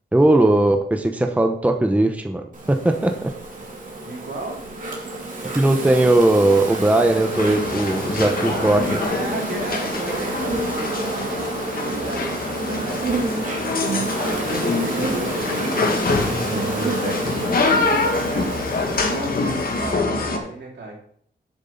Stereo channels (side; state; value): both; normal; correlation 0.65